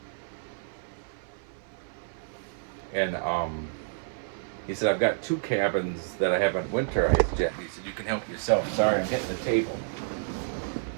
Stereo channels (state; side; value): silent; left; 58 dB below the other